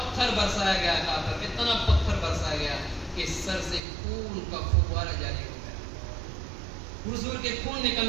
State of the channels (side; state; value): left; drops out; at 3.8 s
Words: برسایا گیا تھا، اتنا پتھر برسایا گیا کہ سر سے خون کا فوارہ جاری ہو گیا، حضور کے خون